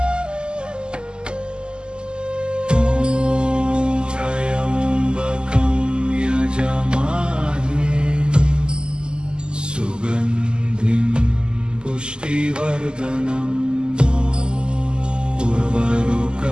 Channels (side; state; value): left; late; 0.047 ms